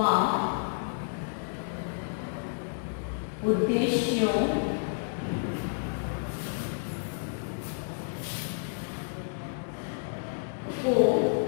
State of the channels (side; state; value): right; silent; 58 dB below the other